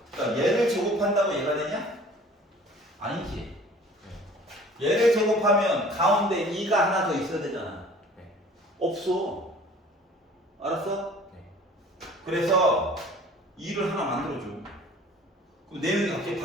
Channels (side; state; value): both; normal; correlation 0.49